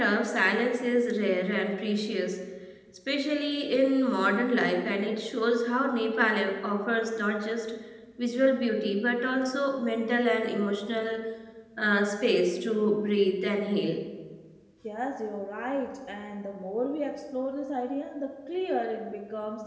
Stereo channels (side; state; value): both; identical; correlation 1.00